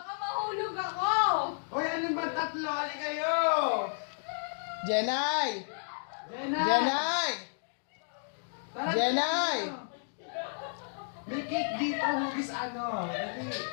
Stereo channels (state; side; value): silent; right; digital silence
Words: mahulog ako! Hoy, ano ba tatlo? Ali kayo! Jenay! Jenay! Jenay! Tara, Jenay! may cake dito, hugis ano. Dali.